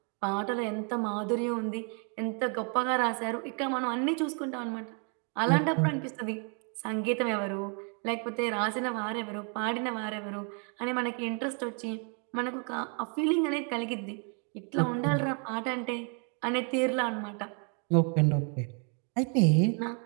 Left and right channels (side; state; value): left; quieter; 39.1 dB